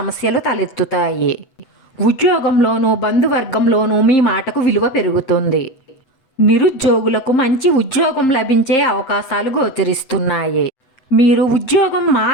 తలెత్తుతాయి. ఉద్యోగంలోనూ బంధువర్గంలోనూ మీ మాటకు విలువ పెరుగుతుంది. నిరుద్యోగులకు మంచి ఉద్యోగం లభించే అవకాశాలు గోచరిస్తున్నాయి. మీరు ఉద్యోగం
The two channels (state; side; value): late; right; 8.0 ms